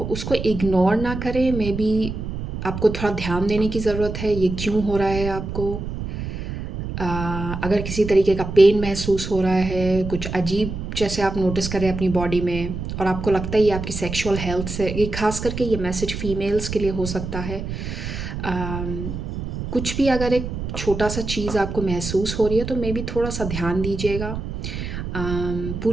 उसको इग्नोर ना करें। मे बी आपको थोड़ा ध्यान देने की ज़रूरत है, ये क्यों हो रहा है आपको। अ, अगर किसी तरीके का पेन महसूस हो रहा है, कुछ अजीब जैसे आप नोटिस करें अपनी बॉडी में, और आपको लगता है ये आपकी सेक्सुअल हेल्थ से, ये खास करके ये मैसेज फीमेल्स के लिए हो सकता है। कुछ भी अगर एक छोटा सा चीज़ आपको महसूस हो रही है तो मे बी थोड़ा सा ध्यान दीजिएगा।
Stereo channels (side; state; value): right; noise; rumble, 6 dB below the sound